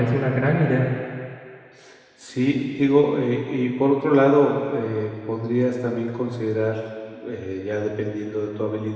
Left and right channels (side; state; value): both; identical; correlation 1.00